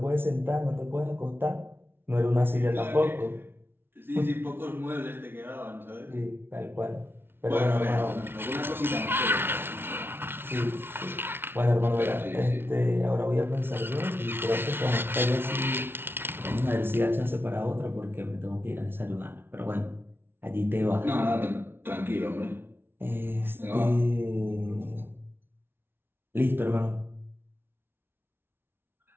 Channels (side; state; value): left; late; 0.11 ms